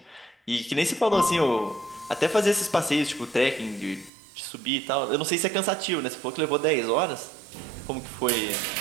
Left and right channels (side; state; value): left; drops out; at 4.1 s